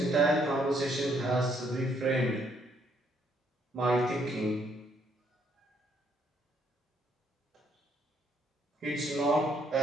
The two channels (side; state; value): both; normal; correlation 0.69